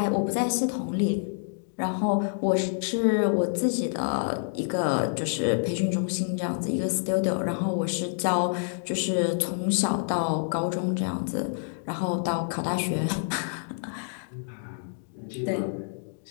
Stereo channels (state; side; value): silent; right; digital silence